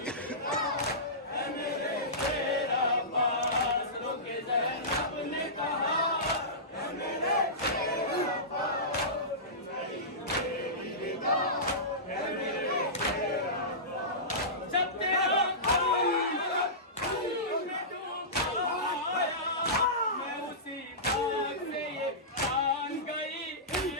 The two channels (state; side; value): normal; both; correlation -0.19